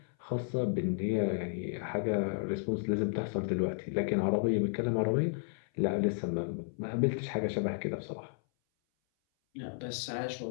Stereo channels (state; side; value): silent; right; 56 dB below the other